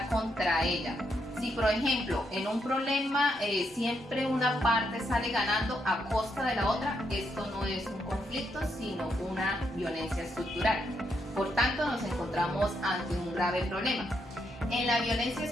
contra ella. Si por ejemplo en un problema siempre una parte sale ganando a costa de la otra, esto no es un conflicto sino una violencia estructural. Por tanto nos encontramos ante un grave problema. En la violencia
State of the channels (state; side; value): normal; both; correlation 0.79